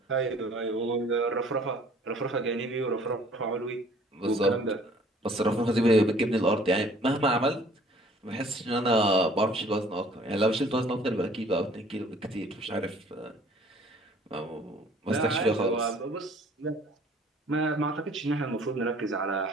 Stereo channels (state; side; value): normal; both; correlation 0.54